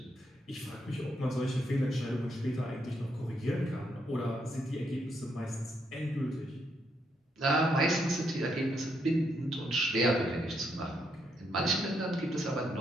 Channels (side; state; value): both; normal; correlation 0.77